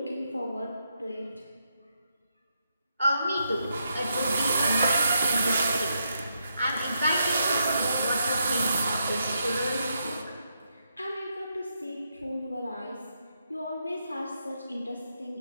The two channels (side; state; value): both; inverted; correlation -0.81